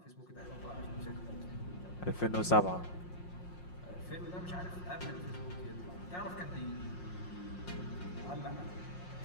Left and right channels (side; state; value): right; late; 5.6 ms